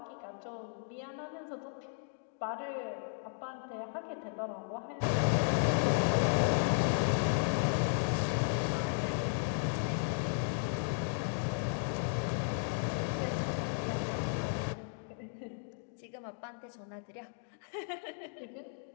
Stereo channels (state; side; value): silent; right; digital silence